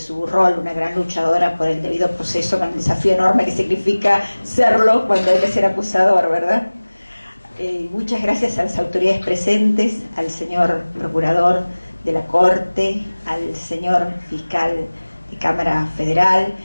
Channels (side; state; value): both; inverted; correlation -1.00